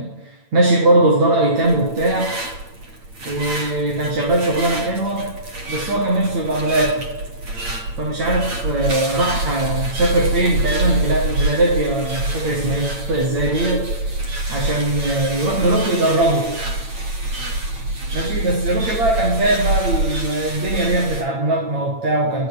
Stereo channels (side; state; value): left; late; 8.9 ms